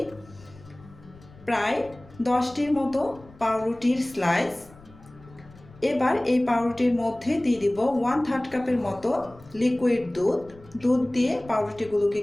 প্রায় 10টির মতো পাউরুটির স্লাইস। এবার এই পাউরুটির মধ্যে দিয়ে দিব 1/3 কাপের মতো লিকুইড দুধ দিয়ে পাউরুটিগুলোকে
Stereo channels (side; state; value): left; noise; rumble, 23 dB below the sound